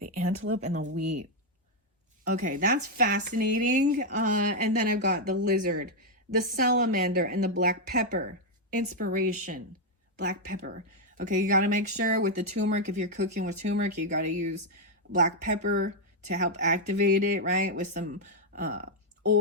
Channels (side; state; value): both; normal; correlation 0.01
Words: antelope and the wheat. Okay, that's fascinating. And then I've got the lizard, the salamander, and the black pepper. Inspiration, black pepper. Okay, you got to make sure with the turmeric, if you're cooking with turmeric, you got to use black pepper to help activate it, right? With some